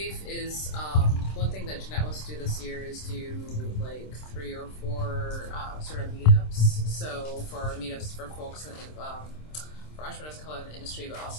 is one thing that Jeanette wants to do this year is do like 3 or 4 sort of meetups. So for meetups for folks in, for entrepreneurs of color in the industry, but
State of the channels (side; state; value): right; late; 26 ms